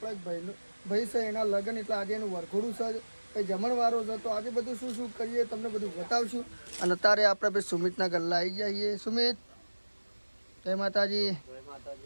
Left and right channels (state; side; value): inverted; both; correlation -1.00